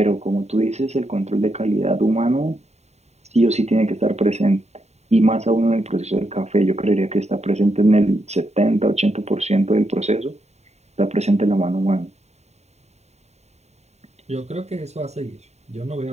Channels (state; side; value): late; left; 0.32 ms